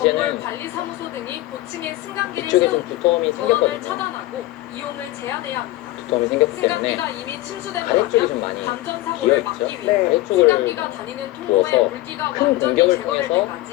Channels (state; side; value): quieter; right; 17.6 dB